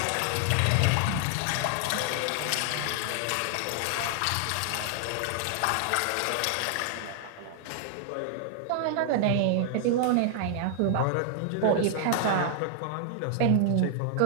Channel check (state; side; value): different; both; correlation 0.00